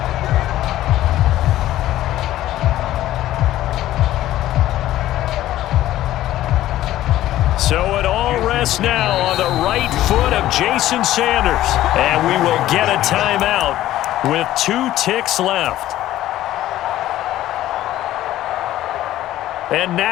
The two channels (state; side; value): quieter; right; 14.1 dB